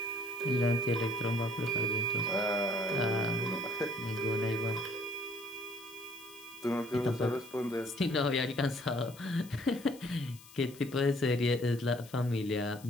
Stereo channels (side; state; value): left; noise; hiss, 21 dB below the sound